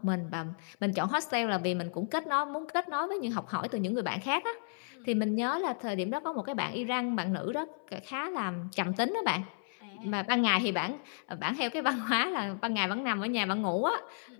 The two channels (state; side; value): silent; right; 56 dB below the other